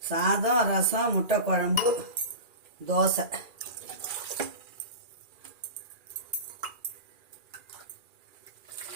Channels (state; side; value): late; left; 2.4 ms